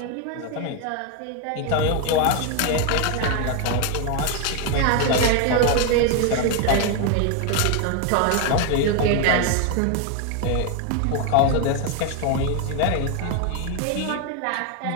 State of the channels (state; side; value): different; both; correlation 0.01